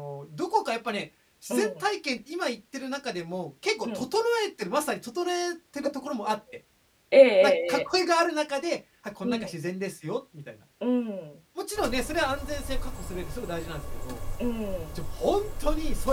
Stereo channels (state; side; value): identical; both; correlation 1.00